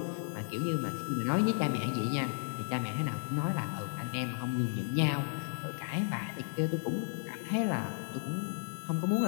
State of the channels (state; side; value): silent; right; digital silence